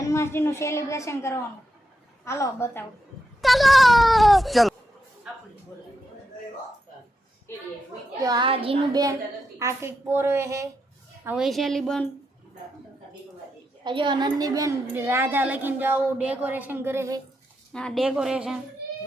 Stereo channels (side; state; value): both; normal; correlation 0.84